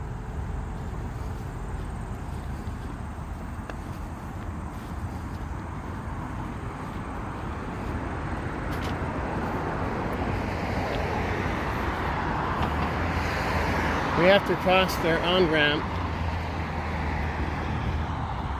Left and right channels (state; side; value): identical; both; correlation 1.00